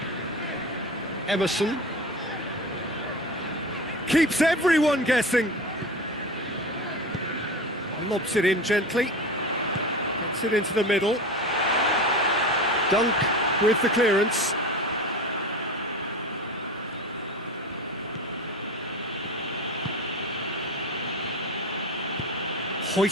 Emerson. Keeps everyone guessing. Lobs it in gently. Gets it into the middle. Dunk with the clearance.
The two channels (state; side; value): normal; both; correlation 0.30